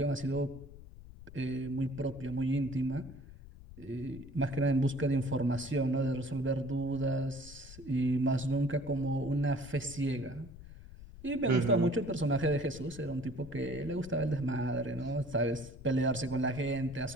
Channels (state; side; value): noise; left; rumble, 16 dB below the sound